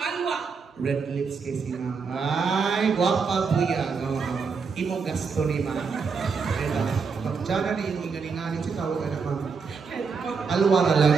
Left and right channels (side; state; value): left; quieter; 5.3 dB